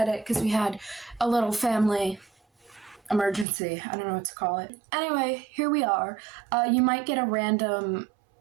because we had a little family emergency. I don't know what to call it. Anyway, here we are. You might get a random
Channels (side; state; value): left; drops out; at 3.5 s